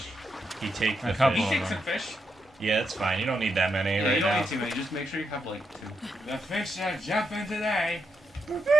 He takes the A couple. He fish. takes some fish. Yeah, it's fine. You don't need that many Yeah, right you don't now. need too many. Just make sure you have like 2. The fish are jumping today.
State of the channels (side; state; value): both; normal; correlation 0.82